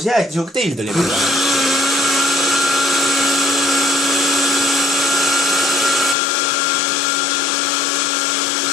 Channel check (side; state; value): right; drops out; at 6.2 s